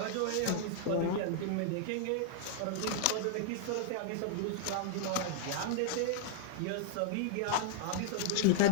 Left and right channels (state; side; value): different; both; correlation -0.01